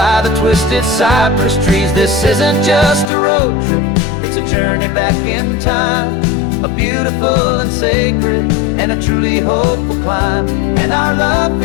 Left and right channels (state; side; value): drops out; right; at 3.1 s